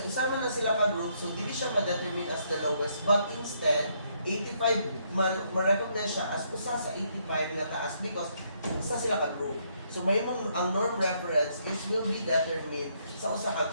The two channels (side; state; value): both; inverted; correlation -0.72